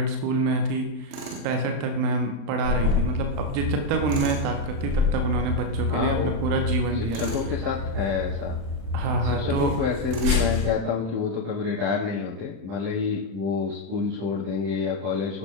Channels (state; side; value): late; left; 35 ms